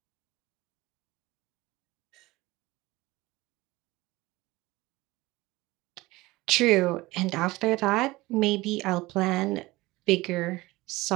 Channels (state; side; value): quieter; left; 20.2 dB